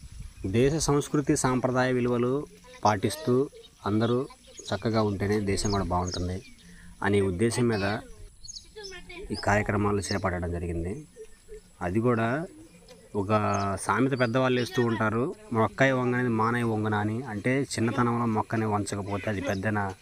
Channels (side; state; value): both; identical; correlation 1.00